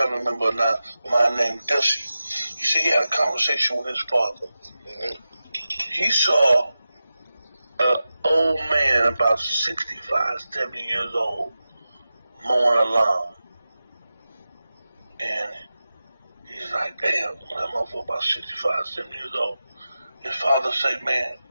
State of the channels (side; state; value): both; inverted; correlation -0.93